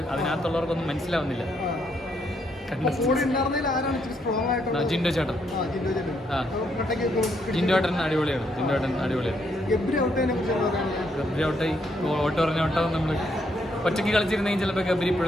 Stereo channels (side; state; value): both; normal; correlation 0.74